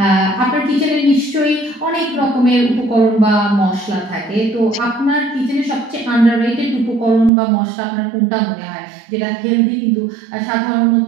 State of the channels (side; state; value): left; drops out; at 7.3 s